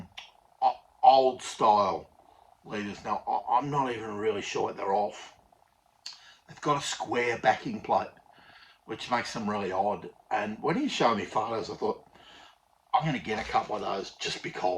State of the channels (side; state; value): both; identical; correlation 1.00